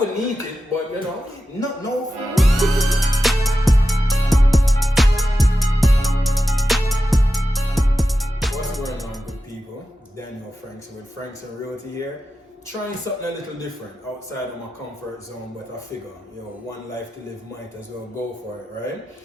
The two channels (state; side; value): normal; both; correlation 0.91